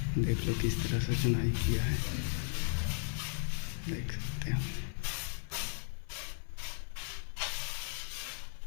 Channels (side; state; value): right; silent; 54 dB below the other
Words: देख लो किस तरह से चुनाई किया है, देख सकते हैं।